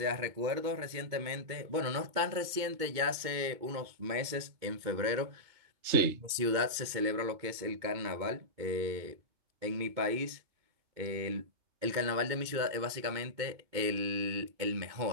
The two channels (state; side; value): late; left; 2.2 ms